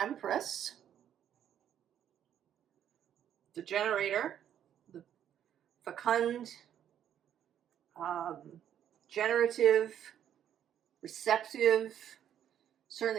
Empress, the Generator, the fecund, generative, receptive,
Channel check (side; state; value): left; quieter; 10.0 dB